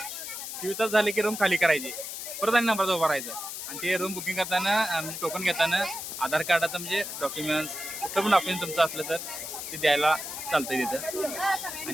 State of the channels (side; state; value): left; noise; hiss, 7 dB below the sound